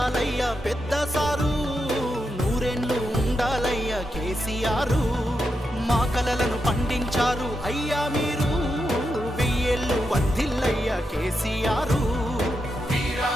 పెద్ద సారు, నూరేళ్ళు ఉండాలయ్య కేసీఆర్. మా కలలను పండించారు అయ్యా మీరు, వెయ్యేళ్ళు వర్ధిల్లయ్య కేసీఆర్.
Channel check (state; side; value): normal; both; correlation 0.85